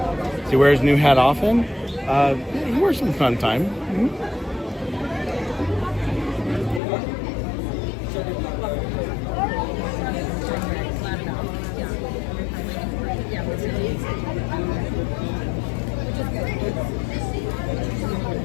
He wears his new hat often. He wears some fun time. Mm-hmm.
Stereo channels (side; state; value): right; drops out; at 6.8 s